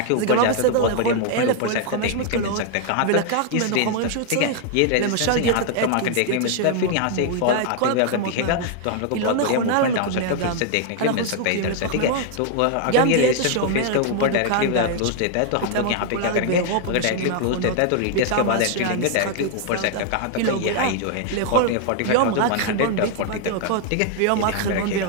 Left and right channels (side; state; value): both; different; correlation 0.00